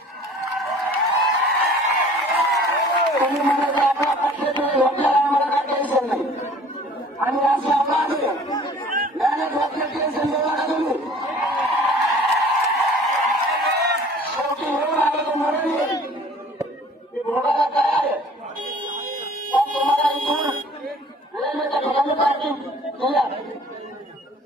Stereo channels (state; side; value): normal; both; correlation 0.50